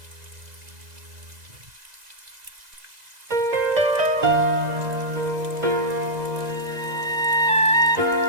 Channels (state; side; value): late; left; 2.0 ms